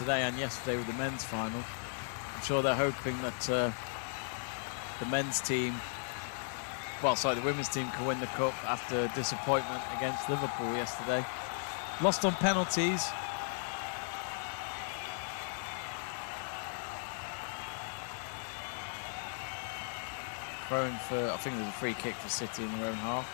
and yesterday with the men's final, I'm sure they're hoping that the men's team, well, sorry, the women's team can win the cup after disappointment against Liverpool yesterday. Lost on penalties. throwing for, I think there's a free kick for City in their own half.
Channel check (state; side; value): silent; right; 54 dB below the other